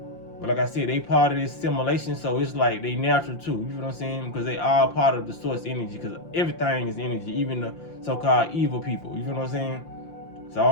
But like I said, they part of this simulation, so it's like they natural too. You know what I'm saying? Because they are part of the source energy. Because everything is energy, even the so-called evil people. You know what I'm saying? So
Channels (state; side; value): late; right; 5.8 ms